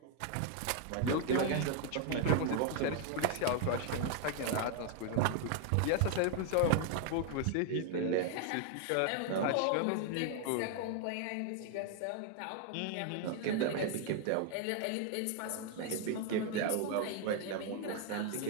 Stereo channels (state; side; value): different; both; correlation 0.00